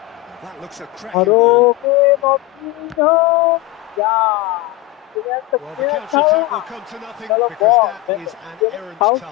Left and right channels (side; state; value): right; quieter; 19.5 dB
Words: That looks a cracking ball. Well, the counter-attack will come to nothing because that is an errant